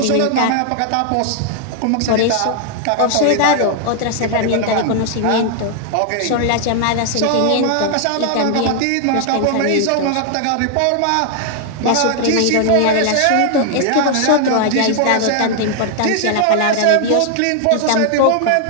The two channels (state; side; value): different; both; correlation 0.00